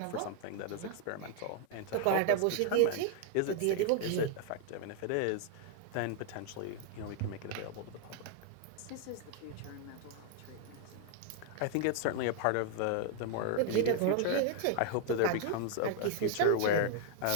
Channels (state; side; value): different; both; correlation 0.00